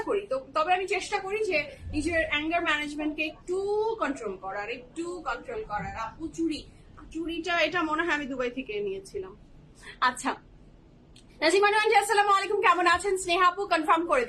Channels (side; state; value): both; identical; correlation 1.00